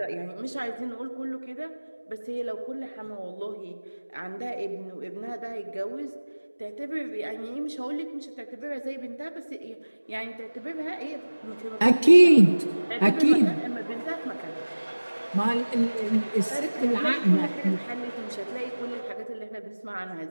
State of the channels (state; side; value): inverted; both; correlation -1.00